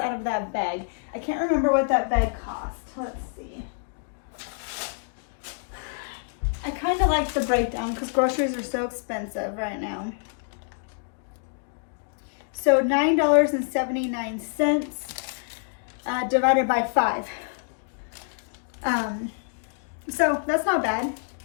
out of that bag. I can't remember what that bag cost. Let's see. I kind of like the breakdown because groceries are so expensive right now. So $9.79 divided by 5. So that's not bad.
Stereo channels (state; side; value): silent; right; digital silence